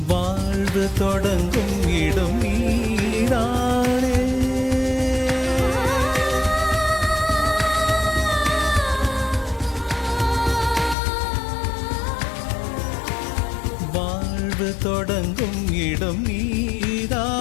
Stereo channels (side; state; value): right; drops out; at 11.0 s